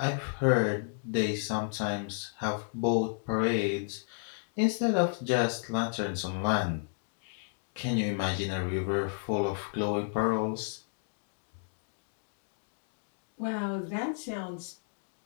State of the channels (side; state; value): right; silent; digital silence